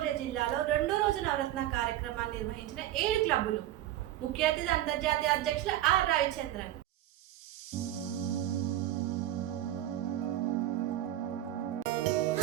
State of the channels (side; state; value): left; quieter; 13.2 dB